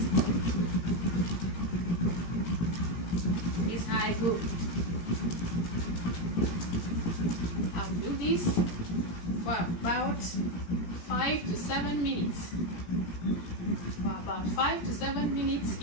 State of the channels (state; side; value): late; right; 17 ms